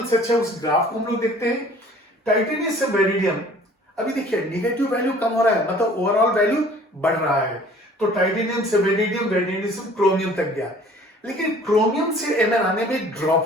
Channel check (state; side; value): normal; both; correlation 0.51